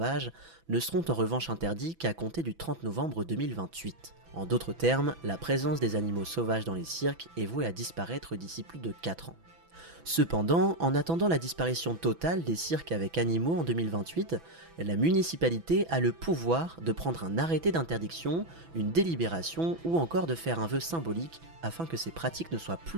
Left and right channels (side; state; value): left; late; 6.0 ms